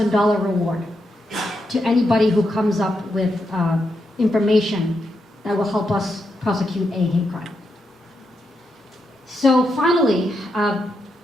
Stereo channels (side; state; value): both; normal; correlation 0.83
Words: reward to anybody who comes up with information that will help us prosecute a hate crime. So finally,